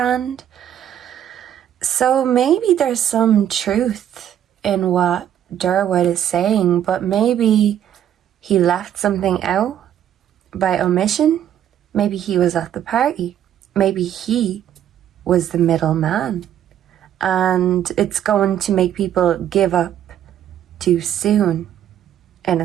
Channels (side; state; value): left; quieter; 10.5 dB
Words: So maybe there's some truth in what Durwood is saying, but maybe he left something out by omission. Maybe he was at the party. Maybe he was the middleman, and it's going to make people give up too soon, in